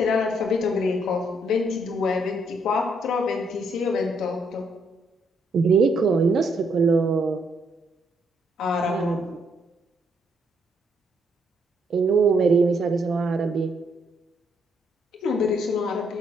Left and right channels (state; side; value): normal; both; correlation 0.73